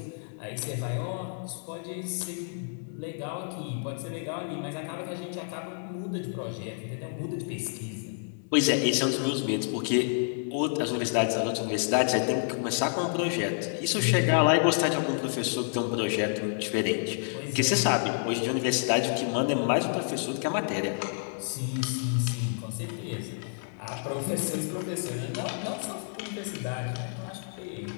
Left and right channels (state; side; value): silent; right; digital silence